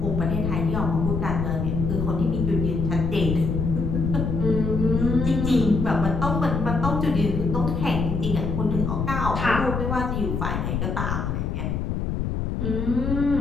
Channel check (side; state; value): left; noise; rumble, 1 dB below the sound